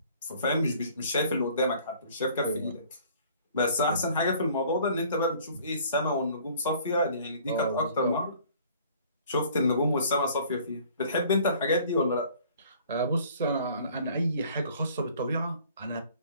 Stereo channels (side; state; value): both; inverted; correlation -0.54